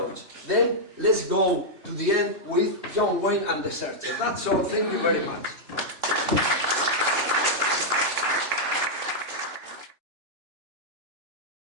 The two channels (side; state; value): left; late; 3.1 ms